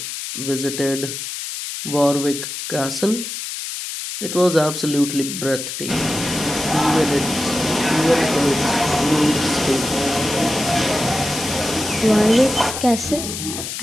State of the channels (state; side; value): noise; left; hiss, 6 dB below the sound